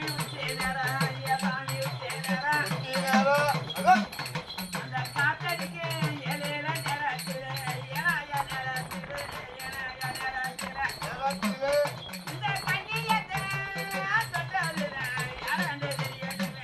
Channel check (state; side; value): identical; both; correlation 1.00